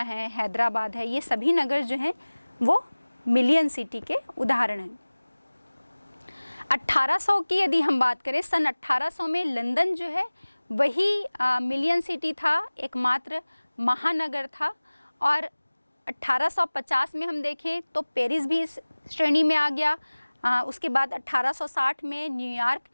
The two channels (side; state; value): both; inverted; correlation -1.00